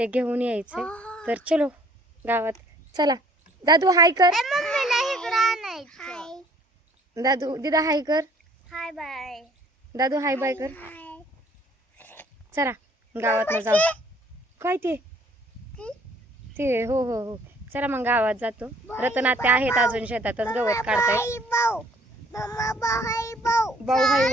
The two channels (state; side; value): normal; both; correlation 0.58